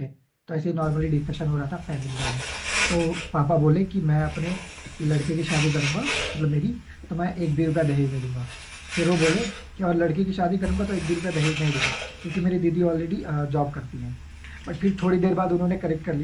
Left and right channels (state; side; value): identical; both; correlation 1.00